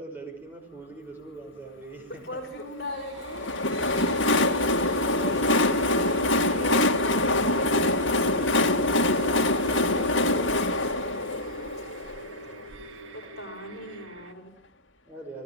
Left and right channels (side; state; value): both; normal; correlation -0.13